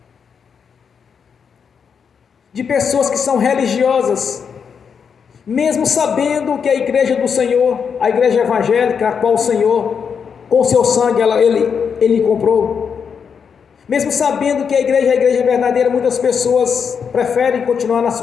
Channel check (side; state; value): right; quieter; 6.6 dB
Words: de pessoas que são religiosas, mesmo sabendo que a igreja do Senhor, a igreja evangélica, a qual o Senhor, com seu sangue, ele comprou, mesmo sabendo que a igreja verdadeira, muitas pessoas preferem continuar nas